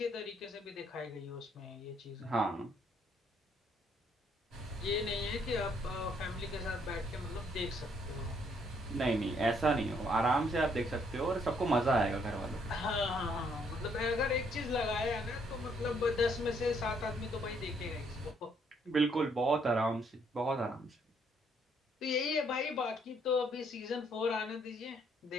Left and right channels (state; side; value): normal; both; correlation 0.69